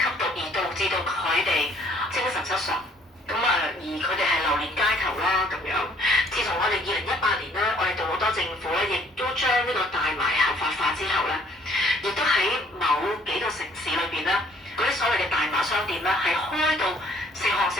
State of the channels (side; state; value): both; normal; correlation 0.60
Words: 毒而導致到佢哋精神失常。咁而佢哋係流連街頭啦咁樣。自從我哋2018年咧，我哋杜魯多政府咧，亦都將呢個大麻合法化之後咧，亦都喺某幾個城市裏邊咧，嗰啲所謂嘅大麻商店咧，係開到成行